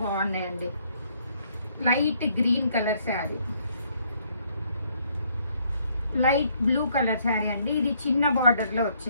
బాగున్నాయండి. Light green colour sari, light blue colour sari అండి. ఇది చిన్న బార్డర్లో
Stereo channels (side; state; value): both; inverted; correlation -0.68